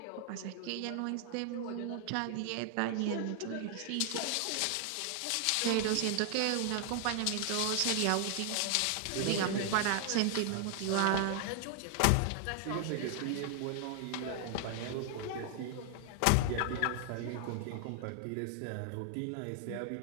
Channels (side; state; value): both; different; correlation 0.00